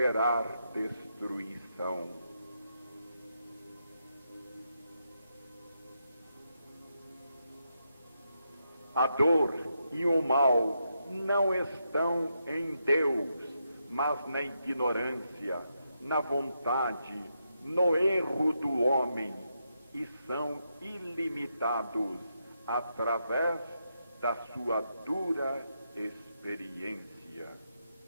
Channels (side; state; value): both; inverted; correlation -0.83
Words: destruição. A dor e o mal não estão em Deus, mas na ignorância, na vontade, no erro do homem, e são ilimitados através da sua dura experiência.